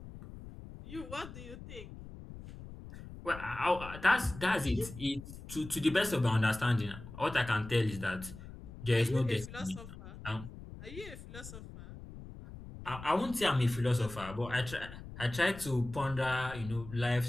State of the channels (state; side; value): noise; left; rumble, 14 dB below the sound